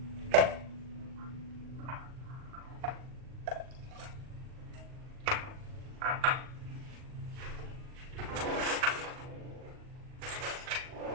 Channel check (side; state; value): left; late; 39 ms